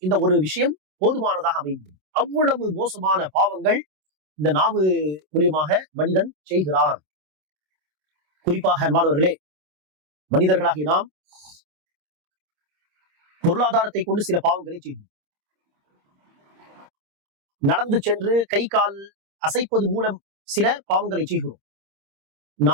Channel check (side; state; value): left; late; 27 ms